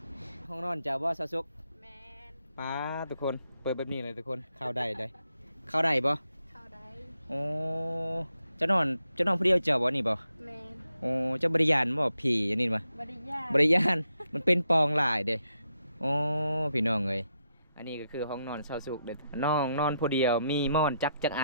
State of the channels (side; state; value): both; inverted; correlation -0.82